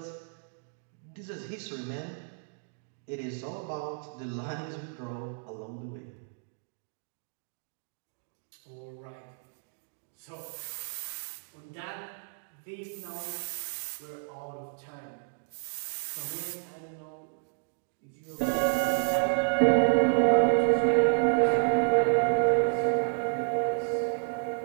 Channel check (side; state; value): left; silent; digital silence